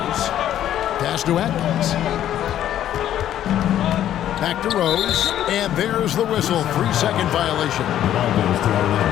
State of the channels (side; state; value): right; quieter; 11.4 dB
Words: Pass to Atkins. Back to Rose, and there's the whistle. 3-second violation. Ball goes to